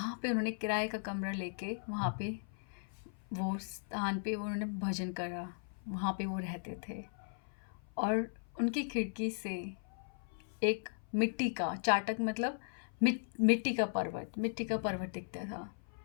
पे उन्होंने किराए का कमरा लेके वहाँ पे वो स्थान पे उन्होंने भजन करा, वहाँ पे वो रहते थे। और उनकी खिड़की से एक मिट्टी का चाटक, मतलब मिट्टी का पर्वत दिखता था।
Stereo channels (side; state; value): right; silent; 53 dB below the other